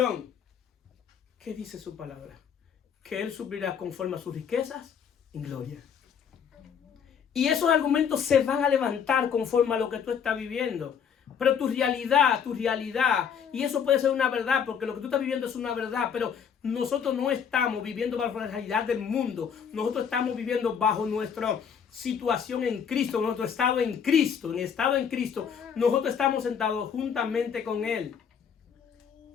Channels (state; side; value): quieter; right; 7.4 dB